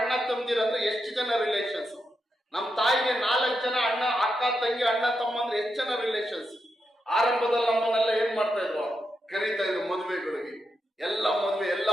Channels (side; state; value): both; normal; correlation 0.85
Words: ಅಣ್ಣ ತಮ್ಮದಿರಂದ್ರೆ ಎಷ್ಟು ಜನ ರಿಲೇಷನ್ಸ್? ನಮ್ಮ ತಾಯಿಗೆ 4 ಜನ ಅಣ್ಣ, ಅಕ್ಕ, ತಂಗಿ, ಅಣ್ಣ, ತಮ್ಮ ಅಂದ್ರೆ ಎಷ್ಟು ಜನ ರಿಲೇಷನ್ಸ್? ಆರಂಭದಲ್ಲಿ ನಮ್ಮನ್ನೆಲ್ಲ ಏನ್ ಮಾಡ್ತಾ ಇದ್ರು? ಕರೀತಾ ಇದ್ರು ಮದುವೆಗಳಿಗೆ. ಎಲ್ಲ ಮದುವೆ, ಎಲ್ಲ